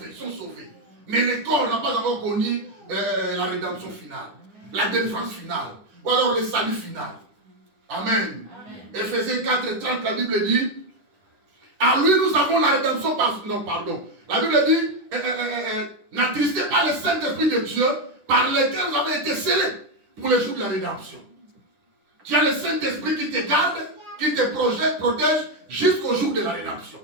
sont sauvés. Mais le corps n'a pas encore connu la rédemption finale, la délivrance finale, ou alors le salut final. Amen. Éphésiens 4, 30, la Bible dit, à lui nous avons la rédemption par... Non, pardon. La Bible dit, n'attristez pas le Saint-Esprit de Dieu par lequel vous avez été scellés pour le jour de la rédemption. Tu as le Saint-Esprit qui te garde, qui te protège jusqu'au jour de la rédemption.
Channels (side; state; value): left; late; 10 ms